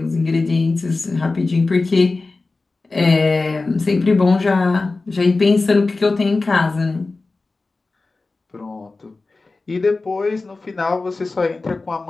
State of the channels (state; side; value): quieter; right; 3.6 dB